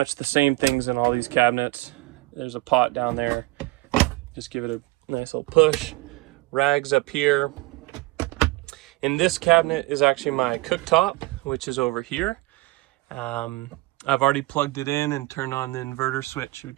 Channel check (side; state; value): left; quieter; 21.3 dB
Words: the same things in all these cabinets. There's a pot down there. Just give it a nice little push. Rags up here. In this cabinet is actually my cooktop, which is over here. I've already plugged it in and turned on the inverter switch,